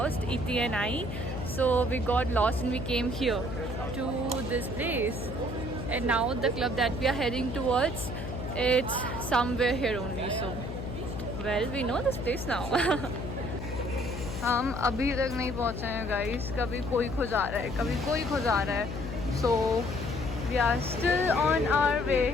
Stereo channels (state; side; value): noise; left; hum, 7 dB below the sound